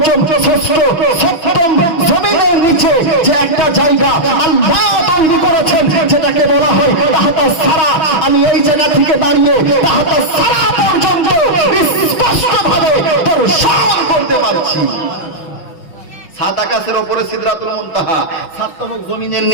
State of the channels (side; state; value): right; late; 6.0 ms